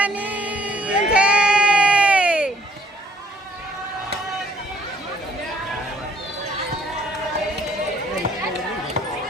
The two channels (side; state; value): both; normal; correlation 0.63